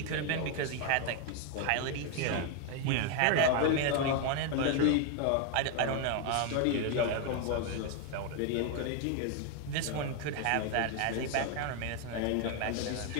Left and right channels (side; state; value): both; different; correlation 0.01